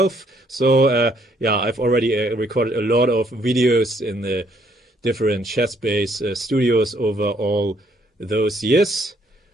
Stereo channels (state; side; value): normal; both; correlation 0.68